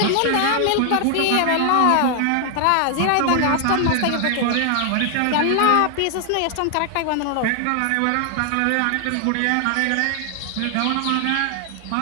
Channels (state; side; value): different; both; correlation 0.00